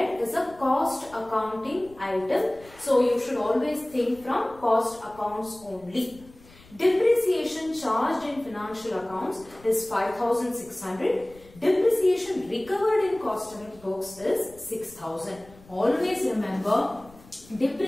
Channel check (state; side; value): noise; left; rumble, 24 dB below the sound